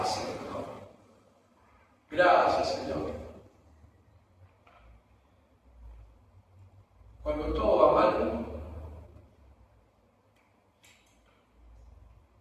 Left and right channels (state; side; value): identical; both; correlation 1.00